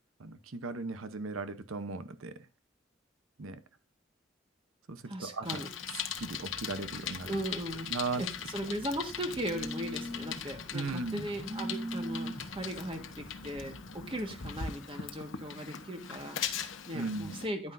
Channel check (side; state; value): both; normal; correlation 0.42